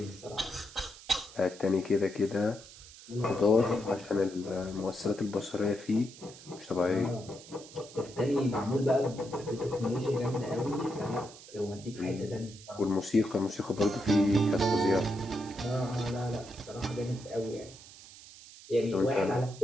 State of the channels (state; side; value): noise; right; hiss, 18 dB below the sound